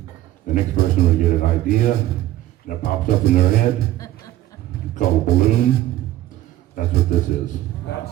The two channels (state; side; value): quieter; left; 14.6 dB